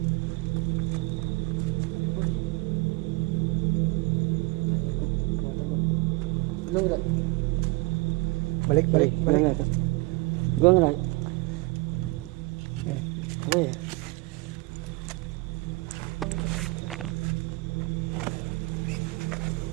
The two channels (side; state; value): left; quieter; 23.6 dB